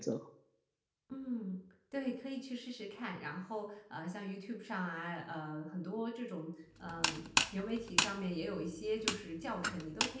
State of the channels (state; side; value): identical; both; correlation 1.00